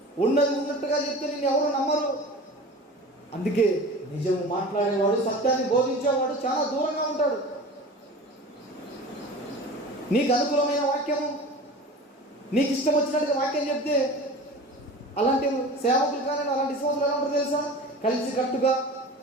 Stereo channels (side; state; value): both; normal; correlation 0.36